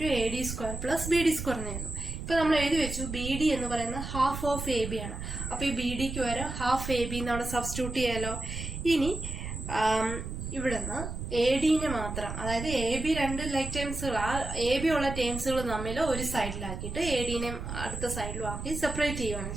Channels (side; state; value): right; noise; rumble, 6 dB below the sound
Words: to AD square plus BD square എന്നായിരുന്നു. ഇപ്പൊ നമ്മൾ എഴുതി വെച്ചു BD എന്ന് പറയുന്നത് ഹാഫ് ഓഫ് AB ആണ്. അപ്പൊ ഈ BDക്ക് വരെ ഹാഫ് AB എന്നവിടെ സബ്സ്റ്റിറ്റ്യൂട്ട് ചെയ്യാലോ. ഇനി ഇവിടുന്ന് ADനെ മാത്രം, അതായത് AB രണ്ട് ലൈക്ക് ടേംസുകൾ, ആ AB ഉള്ള ടേംസുകൾ തമ്മിൽ ഒരു സൈഡിലാക്കിയിട്ട് ADനെ അടുത്ത സൈഡിലും ആക്കി സെപ്പറേറ്റ് ചെയ്യുകയാണ്